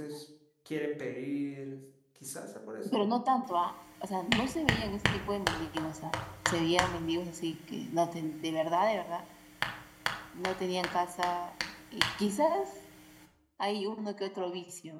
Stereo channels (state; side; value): identical; both; correlation 1.00